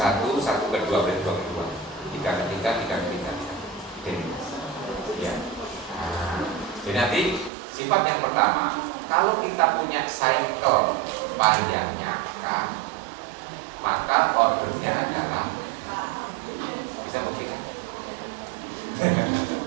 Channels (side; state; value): left; drops out; at 7.5 s